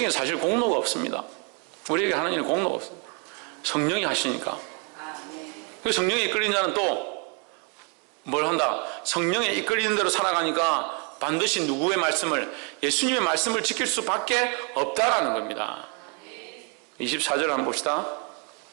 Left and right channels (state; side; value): quieter; left; 34.7 dB